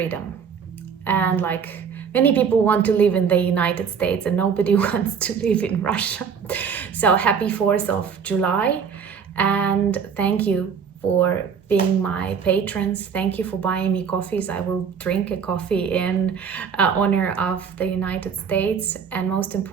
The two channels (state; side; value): quieter; left; 6.7 dB